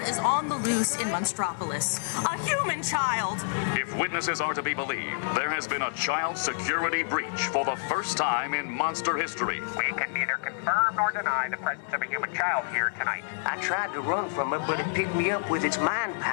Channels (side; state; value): right; silent; 59 dB below the other